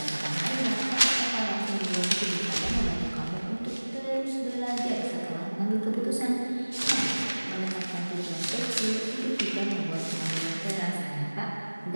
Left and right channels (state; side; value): inverted; both; correlation -1.00